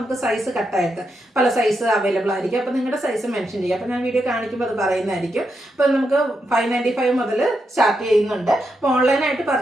സൈസ് കട്ടായിട്ട് പല സൈസ് അവൈലബിൾ ആയിരിക്കും. അപ്പോൾ നിങ്ങളുടെ സൈസ് മെൻഷൻ ചെയ്യുക. അപ്പോൾ ഞാൻ വീഡിയോ കാണിക്കുമ്പോൾ അത് പറയുന്നതായിരിക്കും. അപ്പോൾ നമുക്ക് 595 മുതൽ സ്റ്റാർട്ട് ചെയ്യുന്നുണ്ട്. അപ്പോൾ ഓൺലൈനായിട്ട്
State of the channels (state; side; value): normal; both; correlation 0.84